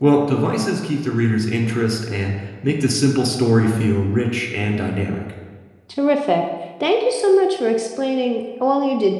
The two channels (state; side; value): identical; both; correlation 1.00